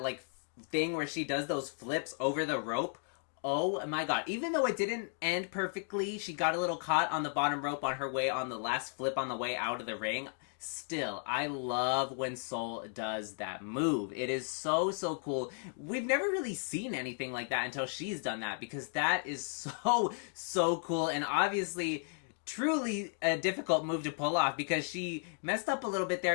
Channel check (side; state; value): right; silent; 55 dB below the other